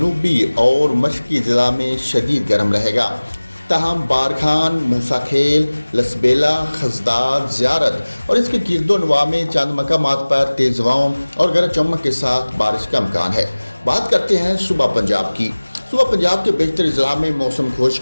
और मशरकी अजला में शदीद गर्म रहेगा। तहम बारखान, मूसा खेल, लसबेला, खजदार, ज़ियारत और इसके गिरदोनवा में चंद मकामात पर तेज़ हवाओं और गरज चमक के साथ बारिश का इम्कान है। बात करते हैं सुबह पंजाब की। सुबह पंजाब के बेशतर अजला में मौसम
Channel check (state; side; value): inverted; both; correlation -1.00